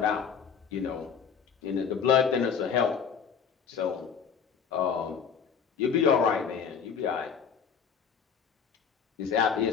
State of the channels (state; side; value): quieter; right; 6.9 dB